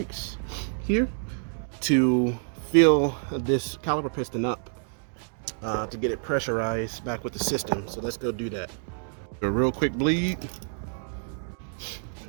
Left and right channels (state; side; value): silent; left; 60 dB below the other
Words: here to fill this caliper piston up. To get it pressurized back with the system. So let's go do that. A real quick bleed.